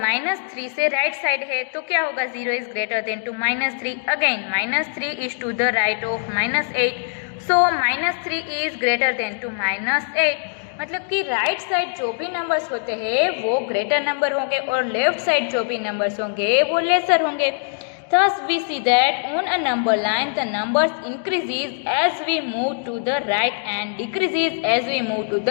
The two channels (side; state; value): right; silent; digital silence